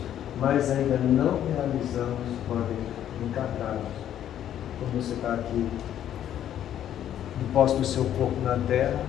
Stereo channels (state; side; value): quieter; right; 10.8 dB